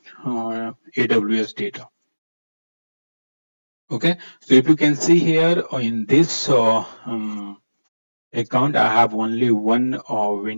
AWS data. Okay, so if you can see here in this account, I have only one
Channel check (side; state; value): both; inverted; correlation -1.00